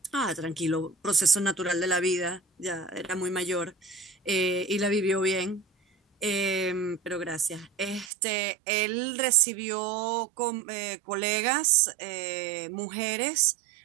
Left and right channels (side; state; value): left; drops out; at 8.1 s